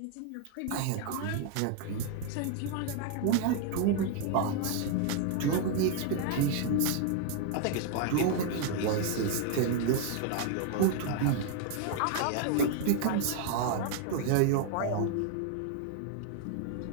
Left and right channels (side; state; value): both; different; correlation 0.00